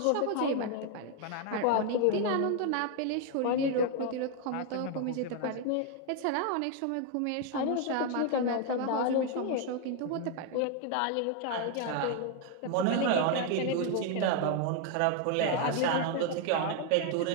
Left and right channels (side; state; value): both; different; correlation 0.01